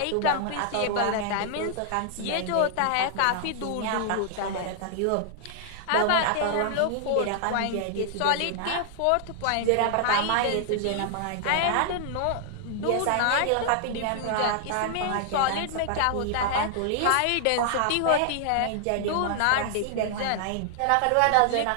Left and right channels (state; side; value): different; both; correlation -0.01